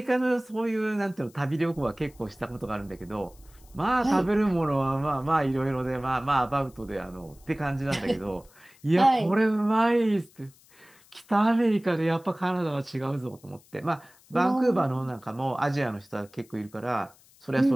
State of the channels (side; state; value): left; noise; hiss, 28 dB below the sound